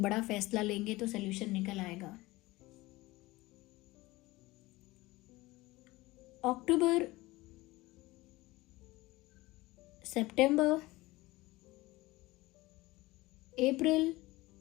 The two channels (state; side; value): quieter; right; 20.1 dB